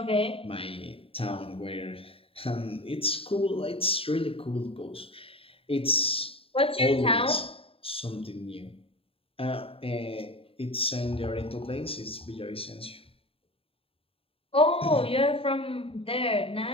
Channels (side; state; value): right; late; 0.27 ms